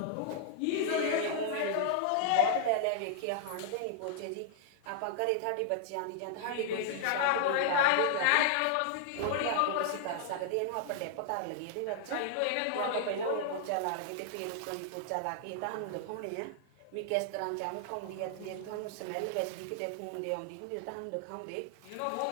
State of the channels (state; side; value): different; both; correlation -0.01